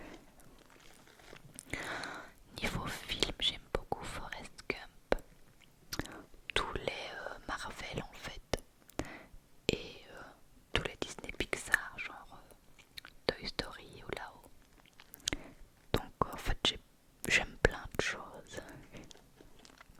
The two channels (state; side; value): identical; both; correlation 1.00